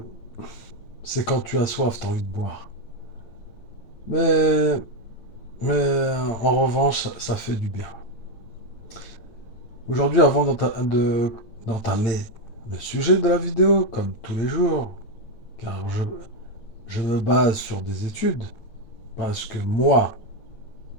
C'est quand tu as soif, tu as envie de boire. Mais en revanche, ça fait du bien. Aujourd'hui, avant d'entamer le sujet de la vidéo, comme tous les jours, car je me base sur des études, parce que moi,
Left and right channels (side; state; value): right; late; 8.9 ms